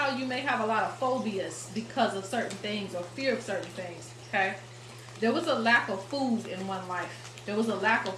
you may have a lot of phobias because of certain things or fear of certain things, okay? There was a lack of food in one life. There was a lack of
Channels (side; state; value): both; identical; correlation 1.00